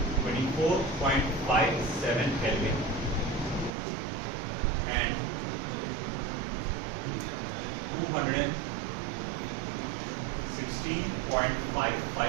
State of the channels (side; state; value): left; drops out; at 3.7 s